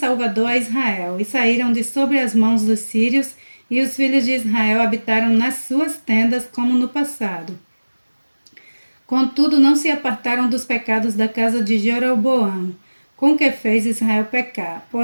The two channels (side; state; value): both; inverted; correlation -1.00